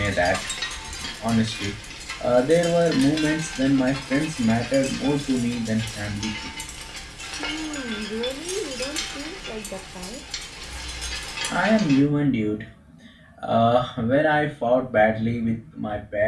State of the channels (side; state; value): both; identical; correlation 1.00